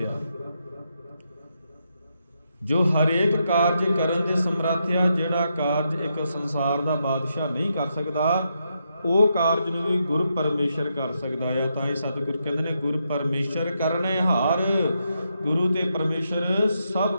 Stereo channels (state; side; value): inverted; both; correlation -0.81